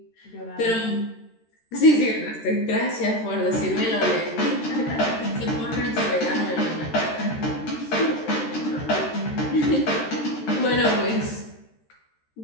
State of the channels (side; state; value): right; late; 13 ms